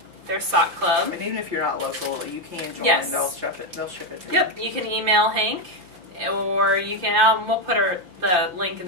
Their sock club. And even if you're not local, you can join. Yes. They'll ship it to you. Yep. You can email Hank, or you can, we'll put the link in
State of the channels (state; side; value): late; left; 5.8 ms